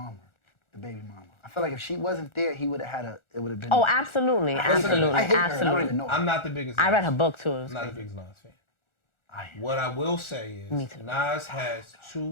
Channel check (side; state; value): right; late; 1.4 ms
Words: the baby mama. I feel like if she wasn't there, he would have had a. It would have been. Oh, absolutely, I hate her. absolutely, I hate her. I don't absolutely. even know. I'm not the biggest... I read Nas. her book too. It was I'm not the crazy. biggest Nas fan. I am. What I will say is, Me too. Nas has